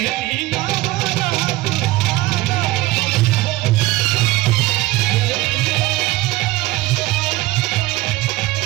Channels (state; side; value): quieter; left; 18.6 dB